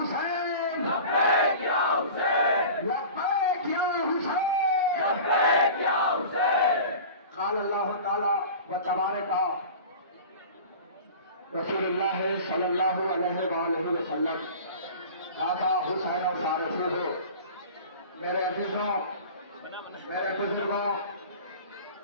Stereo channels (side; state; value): both; inverted; correlation -0.38